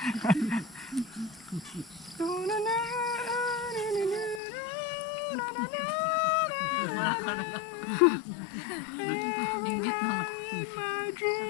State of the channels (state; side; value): drops out; right; at 4.4 s